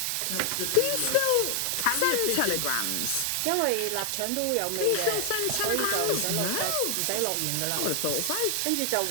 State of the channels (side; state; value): both; different; correlation 0.00